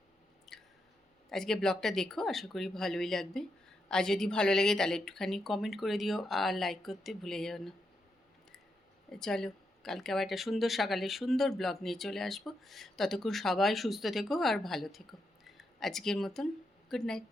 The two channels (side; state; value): both; normal; correlation 0.83